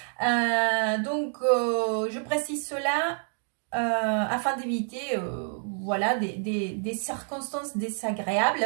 Donc, je précise cela afin d'éviter voilà, des circonstances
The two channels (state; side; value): silent; left; 55 dB below the other